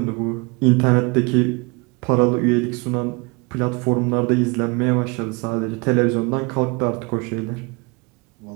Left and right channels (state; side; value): quieter; left; 28.4 dB